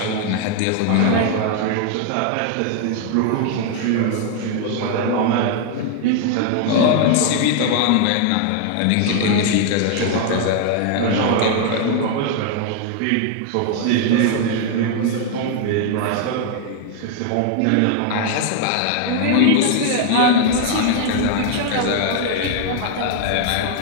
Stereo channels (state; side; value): different; both; correlation 0.00